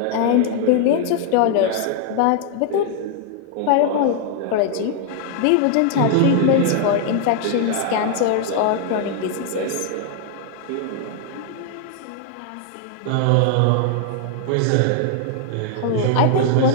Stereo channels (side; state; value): both; different; correlation 0.00